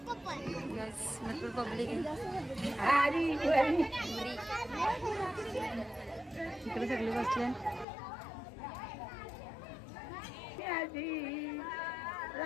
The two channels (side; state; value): right; drops out; at 7.9 s